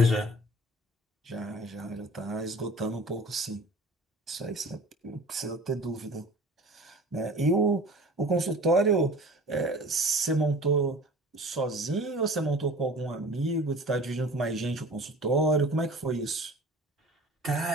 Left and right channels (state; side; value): normal; both; correlation 0.43